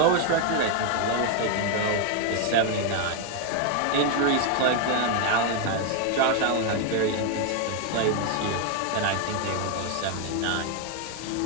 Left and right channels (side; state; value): both; different; correlation 0.01